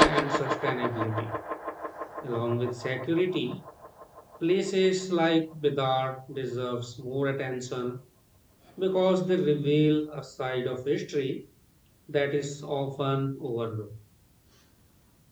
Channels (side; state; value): both; identical; correlation 1.00